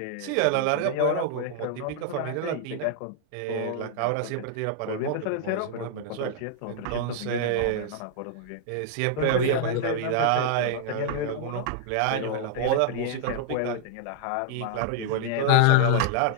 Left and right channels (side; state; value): both; different; correlation 0.00